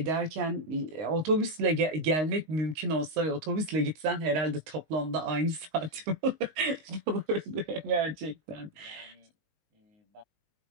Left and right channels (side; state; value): left; late; 19 ms